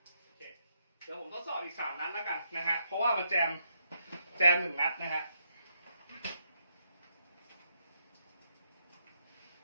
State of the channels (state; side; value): inverted; both; correlation -0.78